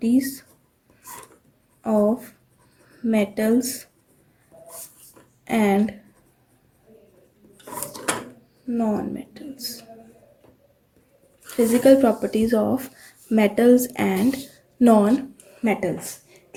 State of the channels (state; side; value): identical; both; correlation 1.00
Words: of metals and non-metals. Physical properties of metals and non-metals.